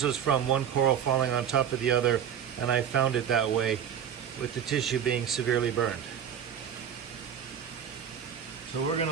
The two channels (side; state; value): left; quieter; 8.8 dB